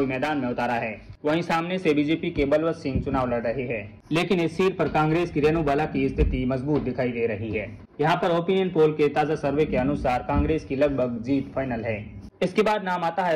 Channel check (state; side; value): identical; both; correlation 1.00